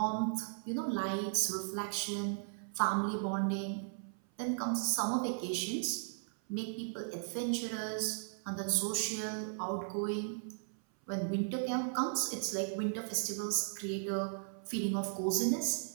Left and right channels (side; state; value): left; silent; 53 dB below the other